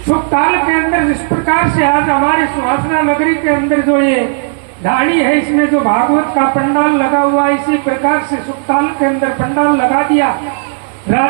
सुखताल के अंदर इस प्रकार से आज हमारी सुहासना नगरी के अंदर जो ये ढाणी है, इसमें जो भागवत का पंडाल लगा हुआ है, इसी प्रकार से सुखताल के अंदर पंडाल लगा दिया।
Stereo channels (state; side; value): silent; left; 72 dB below the other